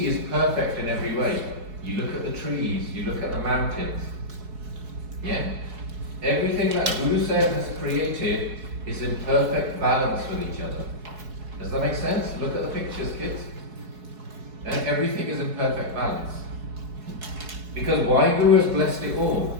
is perfect in every way. You look at the trees, you look at the mountains. Yeah? Everything that Guru Sahib has created is in perfect balance with each other. Does that make sense? Look at the pictures, kids. And everything is in perfect balance. Because Waheguru has blessed it all.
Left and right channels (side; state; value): left; late; 4.7 ms